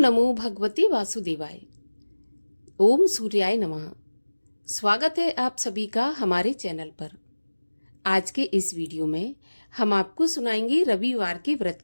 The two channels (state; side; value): inverted; both; correlation -1.00